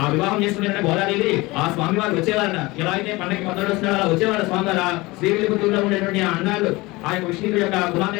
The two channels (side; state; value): right; quieter; 22.0 dB